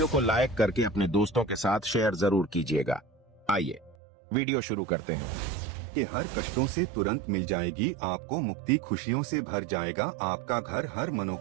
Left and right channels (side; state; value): left; drops out; at 4.0 s